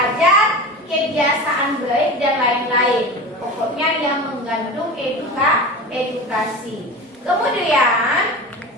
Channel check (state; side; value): normal; both; correlation 0.30